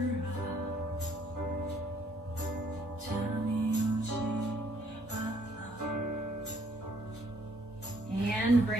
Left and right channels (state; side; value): normal; both; correlation 0.66